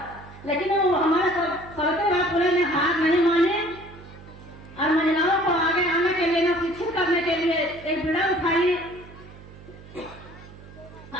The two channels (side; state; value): right; noise; hum, 19 dB below the sound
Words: लेकिन वो हमारे सवित्रीबाई फुले ने हार नहीं माने और महिलाओं को आगे आने के लिए, न शिक्षित करने के लिए एक बीड़ा उठाई